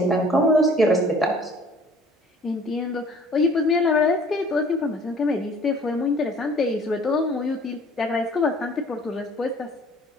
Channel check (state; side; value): normal; both; correlation 0.52